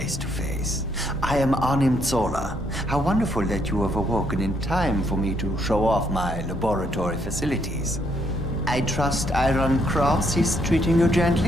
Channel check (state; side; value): normal; both; correlation 0.72